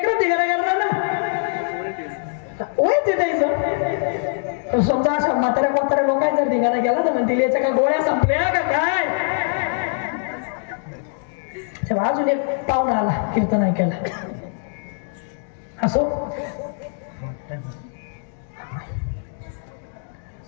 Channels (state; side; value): silent; right; digital silence